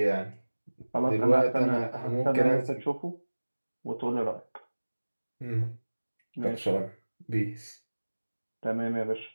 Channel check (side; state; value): both; inverted; correlation -1.00